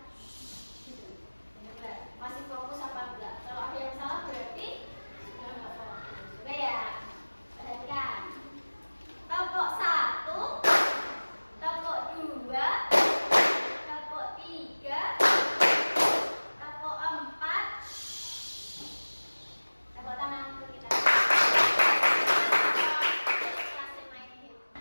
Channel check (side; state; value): both; inverted; correlation -1.00